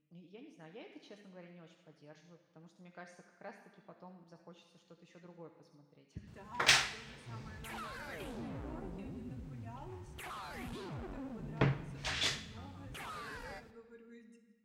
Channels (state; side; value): identical; both; correlation 1.00